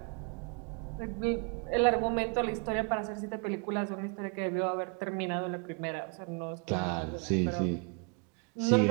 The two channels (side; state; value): left; quieter; 36.4 dB